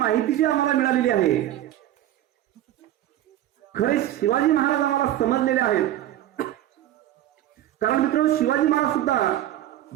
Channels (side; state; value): left; quieter; 13.0 dB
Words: जी आम्हाला मिळालेली आहे. खरे शिवाजी महाराज आम्हाला समजलेले आहेत. कारण मित्रांनो, शिवाजी महाराज सुद्धा